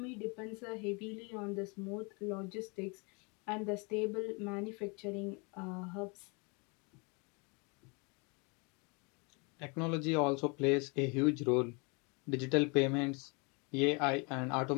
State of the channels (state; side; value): quieter; right; 31.5 dB